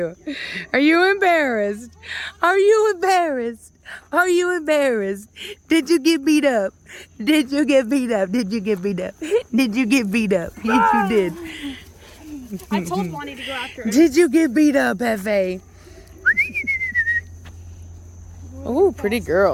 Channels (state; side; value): identical; both; correlation 1.00